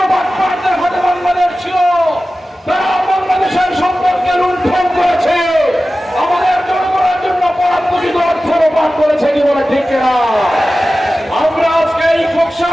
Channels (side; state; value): both; normal; correlation 0.95